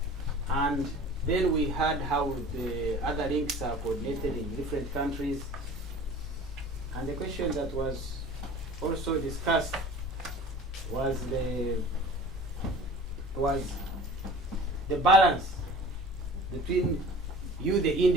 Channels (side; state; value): both; normal; correlation 0.43